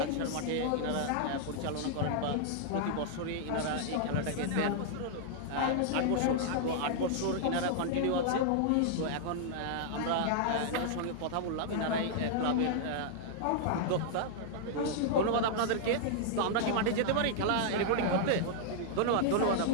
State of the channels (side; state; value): both; different; correlation -0.01